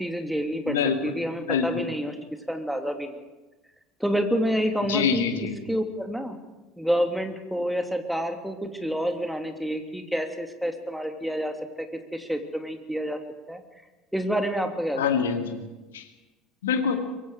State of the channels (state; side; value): normal; both; correlation 0.52